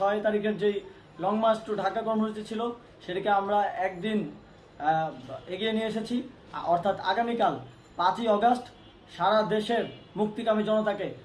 তারিখের যেই লং মার্চ টু ঢাকা কর্মসূচি ছিল সেটাকে আমরা একদিন এগিয়ে নিয়ে এসেছি। অর্থাৎ আগামীকাল 5ই অগস্ট সারা দেশের মুক্তিকামী জনতাকে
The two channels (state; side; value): identical; both; correlation 1.00